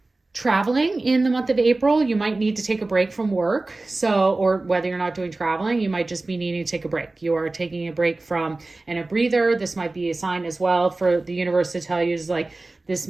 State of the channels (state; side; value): quieter; left; 3.2 dB